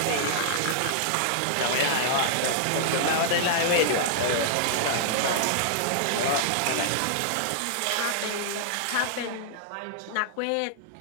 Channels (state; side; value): different; both; correlation -0.01